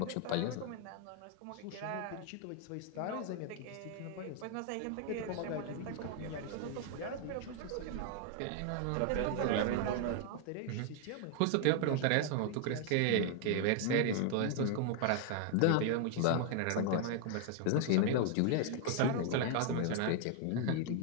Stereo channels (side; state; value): both; different; correlation 0.00